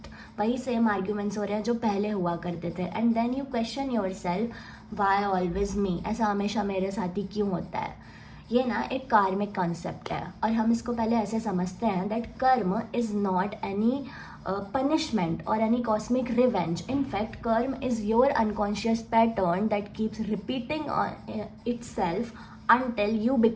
वही same arguments हो रहे हैं जो पहले हुआ करते थे. And then you question yourself, why always me, ऐसा हमेशा मेरे साथ ही क्यों होता है. ये ना एक कार्मिक कॉन्सेप्ट है और हम इसको पहले ऐसे समझते हैं दैट कर्म is not any punishment or any cosmic revenge. In fact, karma is your unconscious pattern that keeps repeating itself until you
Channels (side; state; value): both; identical; correlation 1.00